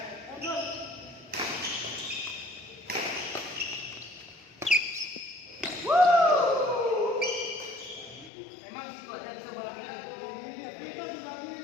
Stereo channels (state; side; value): drops out; right; at 8.3 s